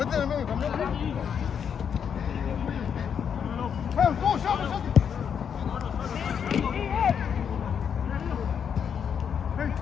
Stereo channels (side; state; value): right; quieter; 7.6 dB